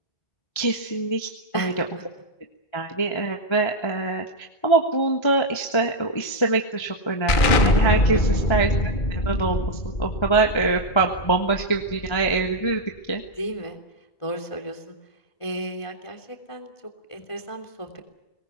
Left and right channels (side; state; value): right; late; 1.3 ms